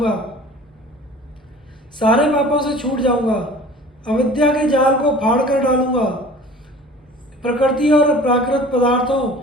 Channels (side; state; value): both; normal; correlation 0.44